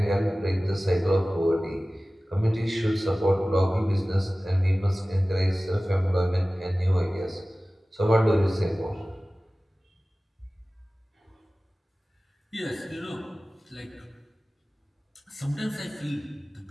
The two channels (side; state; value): both; normal; correlation 0.97